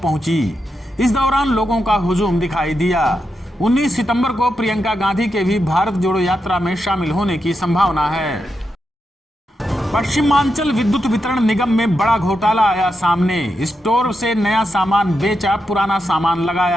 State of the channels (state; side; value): normal; both; correlation 0.86